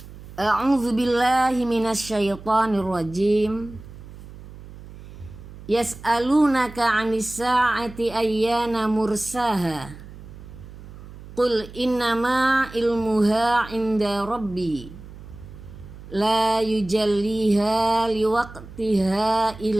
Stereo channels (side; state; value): right; noise; hum, 16 dB below the sound